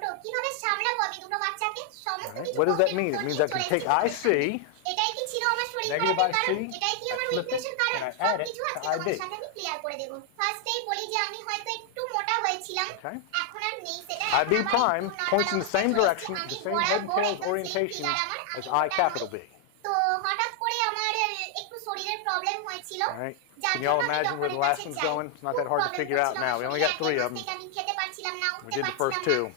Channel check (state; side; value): different; both; correlation 0.00